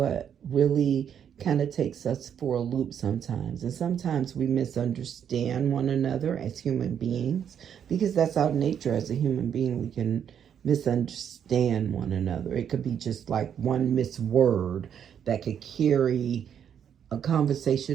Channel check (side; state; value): left; quieter; 8.6 dB